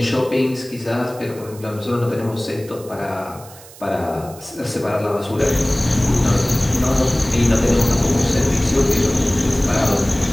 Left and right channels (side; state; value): right; noise; hiss, 20 dB below the sound